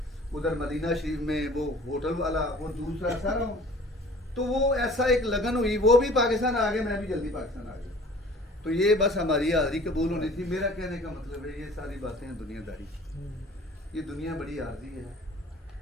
ادھر مدینہ شریف میں وہ ہوٹل والا, وہ دوسرا سارا. تو وہ ایسا ایک لگن ہوئی, وہ بھی پاکستان آ گئے, میں بھی جلدی پاکستان آ گیا. تو یہ بس ہماری حاضری قبول ہونی تھی. میرا کہنے کا مطلب ہے یہ ساری باتیں ہیں دنیا داری. یہ دنیا بڑی عارضی ہے.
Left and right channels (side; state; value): both; normal; correlation 0.48